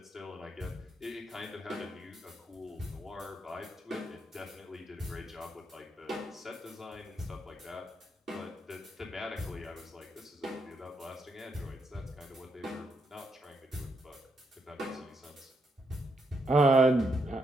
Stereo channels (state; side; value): normal; both; correlation 0.79